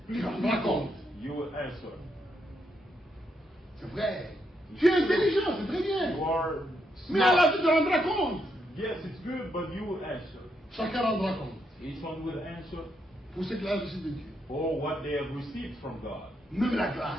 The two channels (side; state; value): both; normal; correlation 0.79